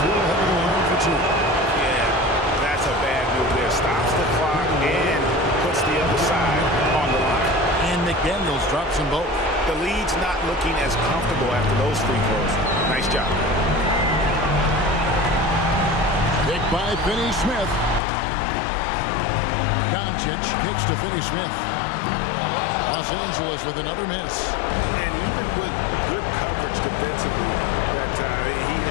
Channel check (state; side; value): drops out; right; at 18.0 s